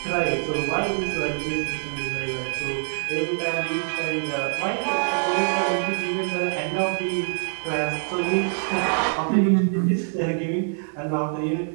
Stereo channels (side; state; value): left; silent; digital silence